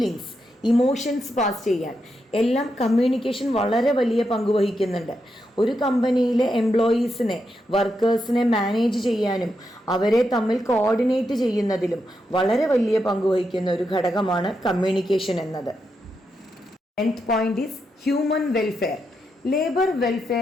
emotions pass ചെയ്യാൻ എല്ലാം കമ്മ്യൂണിക്കേഷൻ വളരെ വലിയ പങ്ക് വഹിക്കുന്നുണ്ട്. ഒരു കമ്പനിയിലെ എംപ്ലോയീസിനെ, വർക്കേഴ്സിനെ മാനേജ് ചെയ്യാനും അവരെ തമ്മിൽ കോർഡിനേറ്റ് ചെയ്യുന്നതിലും വളരെ വലിയ പങ്ക് വഹിക്കുന്ന ഒരു ഘടകമാണ് കമ്മ്യൂണിക്കേഷൻ എന്നത്. 10th point is human welfare. Labor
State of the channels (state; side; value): normal; both; correlation 0.84